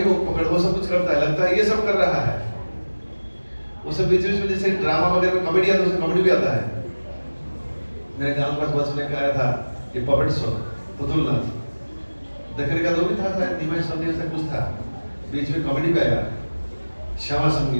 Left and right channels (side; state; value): both; inverted; correlation -1.00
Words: वो पकड़, वो सब कुछ करता है, लगता है ये सब कर रहा है। वो सब बीच बीच में जैसे ड्रामा वगैरह में कॉमेडी आता है, उसमें कॉमेडी भी आता है। मेरे गांव के पास बस में आया था ये पपेट शो पुतुल नाच देखने का, तो भी था शायद निमाय संदेश से कुछ था, बीच में कॉमेडी पे आया श्यामा